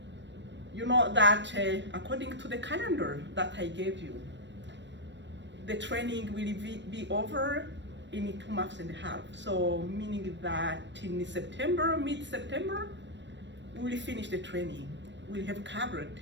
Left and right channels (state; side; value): late; left; 0.53 ms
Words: you know that according to the calendar that I gave you, the training will be over in 2.5 months. So meaning that in September, mid-September, we will finish the training. We'll have covered